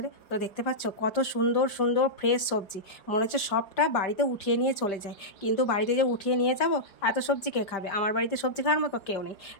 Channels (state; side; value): late; right; 5.2 ms